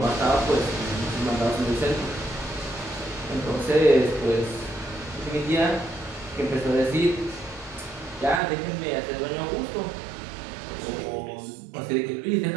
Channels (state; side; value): drops out; left; at 8.4 s